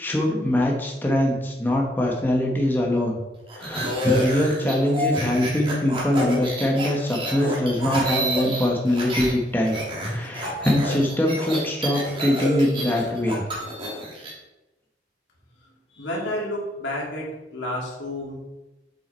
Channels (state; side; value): normal; both; correlation 0.71